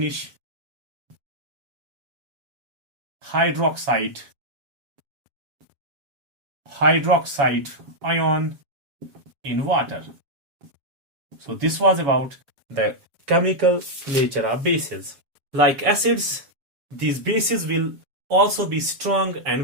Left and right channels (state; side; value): late; left; 7.0 ms